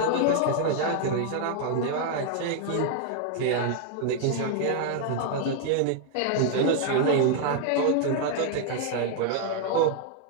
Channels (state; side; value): different; both; correlation 0.00